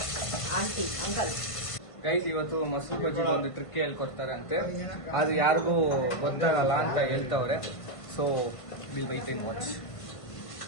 ಆಂಟಿ ಅಂಕಲ್. ಗೈಸ್, ಇವತ್ತು ಮೊಸರು ಬಜ್ಜಿಗೆ ಒಂದು ಟ್ರಿಕ್ ಹೇಳ್ಕೊಡ್ತಾರೆ ಅಂತೆ. ಅದು ಯಾರಿಗೂ ಗೊತ್ತಾಗಲ್ಲ ಅಂತ ಹೇಳ್ತಾವ್ರೆ. So will wait and watch.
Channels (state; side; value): late; right; 1.5 ms